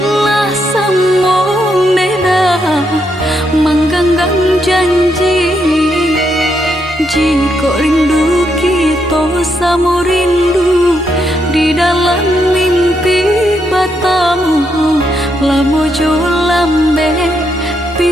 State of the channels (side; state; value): both; normal; correlation 0.79